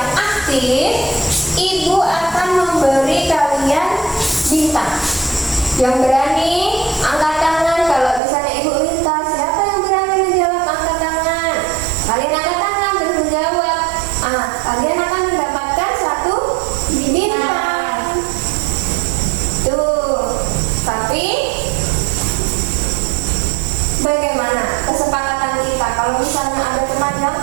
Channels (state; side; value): drops out; left; at 8.2 s